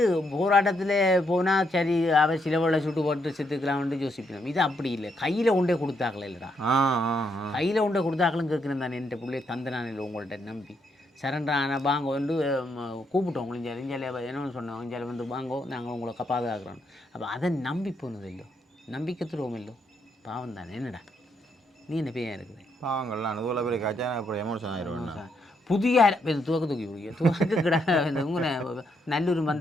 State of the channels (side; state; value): both; normal; correlation 0.77